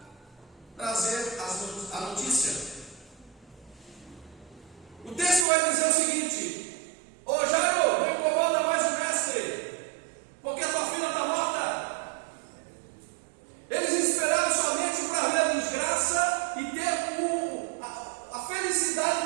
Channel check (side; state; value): left; drops out; at 5.5 s